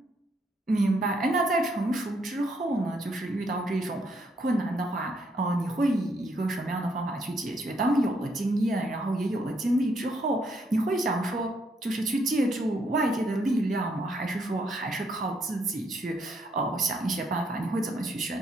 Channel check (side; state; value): both; normal; correlation 0.73